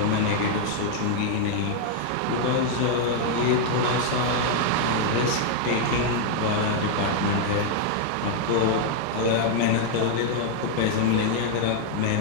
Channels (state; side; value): different; both; correlation 0.00